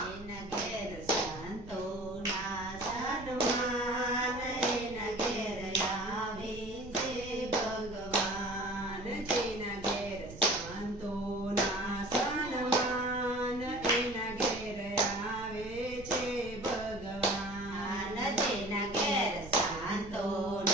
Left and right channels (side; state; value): right; noise; rumble, 15 dB below the sound